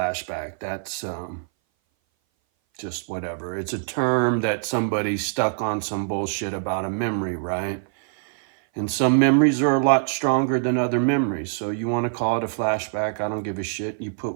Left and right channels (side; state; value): left; silent; 58 dB below the other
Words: That's just whatever. It's a term that somebody stuck on some bullshit about a memory, right? And some memories are a lot stronger than other memories. So you want to call it a flashback, I don't give a shit. You put